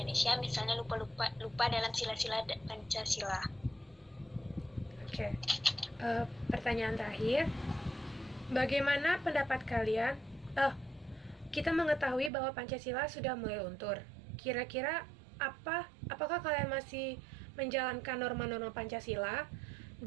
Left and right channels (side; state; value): left; drops out; at 12.3 s